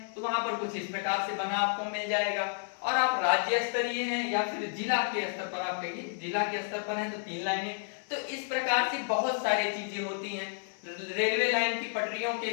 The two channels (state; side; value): silent; right; 57 dB below the other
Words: तो वहां पर कुछ इस प्रकार से बना आपको मिल जाएगा। और आप राज्य स्तरीय हैं या फिर जिला के स्तर पर, आप कहिए जिला के स्तर पर हैं तो 3 लाइनें। तो इस प्रकार से बहुत सारी चीजें होती हैं। रेलवे लाइन की पटरियों के